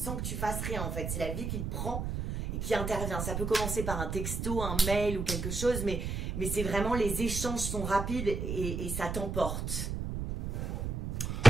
que tu fasses rien, en fait. C'est la vie qui te prend et qui intervient. Ça peut commencer par un texto, un mail ou quelque chose, mais c'est vraiment, les échanges sont rapides et ça t'emporte.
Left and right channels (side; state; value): right; noise; rumble, 3 dB below the sound